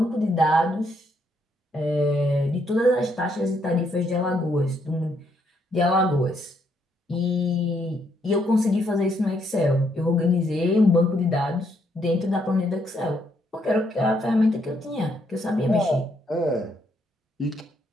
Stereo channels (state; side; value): normal; both; correlation 0.73